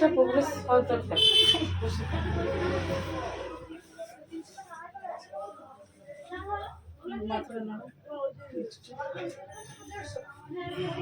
প্রোগ্রেস হওয়া দরকার। মাথাটা না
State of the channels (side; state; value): both; identical; correlation 1.00